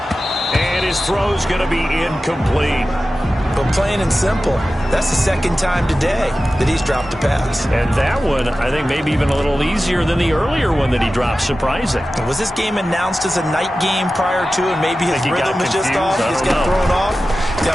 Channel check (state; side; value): normal; both; correlation 0.94